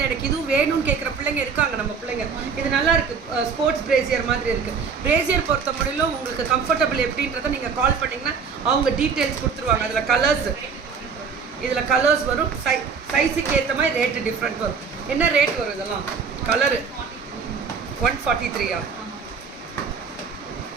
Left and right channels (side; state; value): left; quieter; 5.8 dB